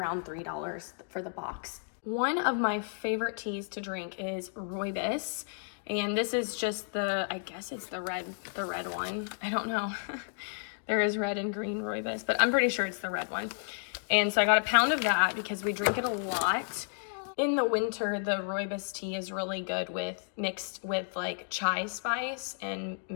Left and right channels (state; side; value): silent; right; digital silence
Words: $3 for the box. One of my favorite teas to drink is rooibos. And this is just the, I guess it's the red one. I don't know. There is red and green rooibos, but I'm pretty sure it's the red one. And so I got a pound of that because we drink it a lot. In the winter, the rooibos tea is really good mixed with like chai spice and